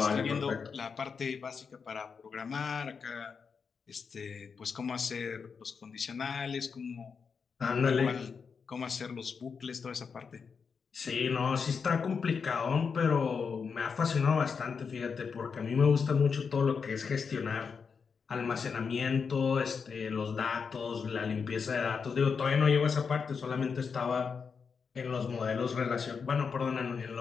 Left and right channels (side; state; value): right; quieter; 5.8 dB